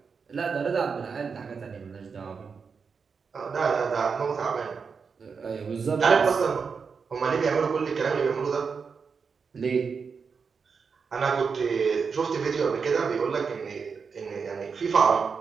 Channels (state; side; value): quieter; left; 5.6 dB